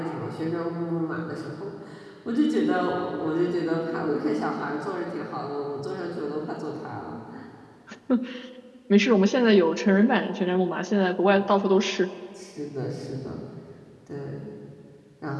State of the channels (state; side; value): identical; both; correlation 1.00